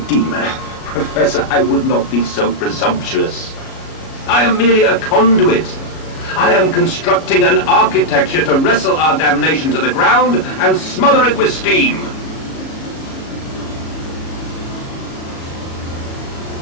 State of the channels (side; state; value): right; late; 37 ms